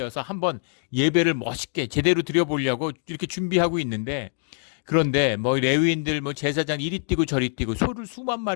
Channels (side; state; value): right; silent; 62 dB below the other